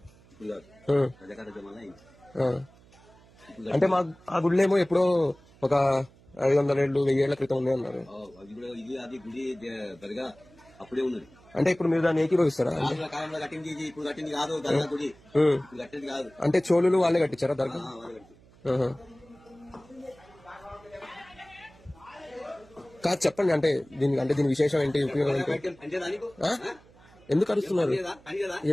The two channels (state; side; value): noise; right; hum, 26 dB below the sound